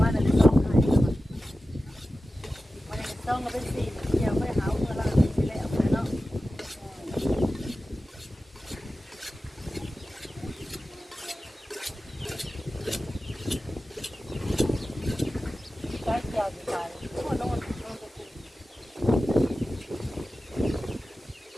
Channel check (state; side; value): normal; both; correlation 0.94